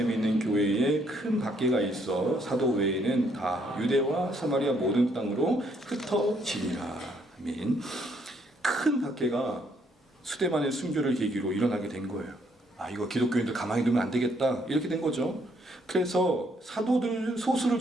있는 교회에 큰 박해가 있어 사도 외에는 다 유대와 사마리아 모든 땅으로 흩어지니라. 아멘. 큰 박해가 스데반의 순교를 계기로 일어나게 된 거예요. 이거 기독교인들 가만히 두면 안 되겠다, 이렇게 된 거죠. 그래서 사도들 소수를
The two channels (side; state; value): both; normal; correlation 0.70